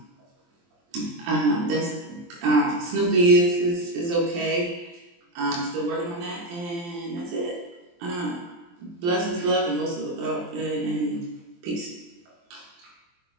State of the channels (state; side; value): late; left; 23 ms